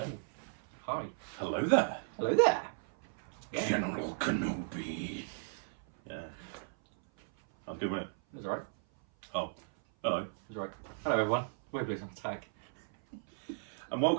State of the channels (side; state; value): left; silent; 54 dB below the other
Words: Hi. Hello there. Hello there. Yeah. General Kenobi. Yeah. That was good, wasn't it? It was alright. Oh, hello. It was alright. Hello everyone. We're Blues on Tag. And